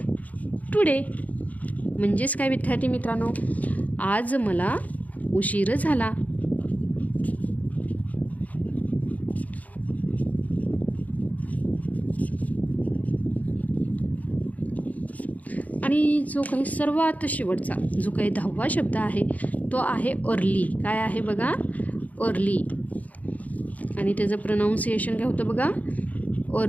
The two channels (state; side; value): late; right; 0.075 ms